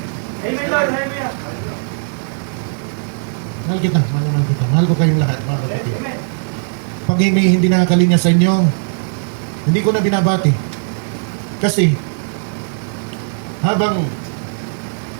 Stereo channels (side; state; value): left; silent; 65 dB below the other